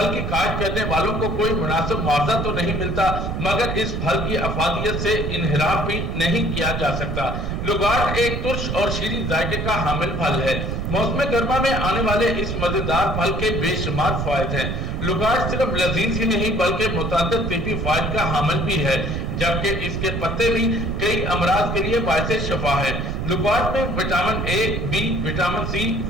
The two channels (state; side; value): noise; right; rumble, 2 dB below the sound